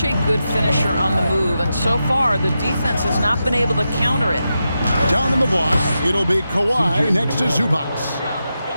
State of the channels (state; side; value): inverted; both; correlation -0.88